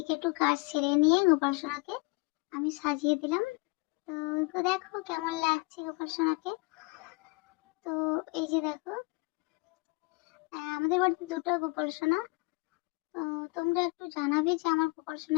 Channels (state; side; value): quieter; right; 27.7 dB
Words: একটু কাজ সেরে নিয়ে গোপাল সোনাকে আমি সাজিয়ে দিলাম। তো তো দেখো কেমন লাগছে গোপাল সোনাকে। তো এই যে দেখো, আমাদের বাড়িতে দুটো গোপাল সোনা। তো তোমরা একটু জানাবে যে আমার গোপাল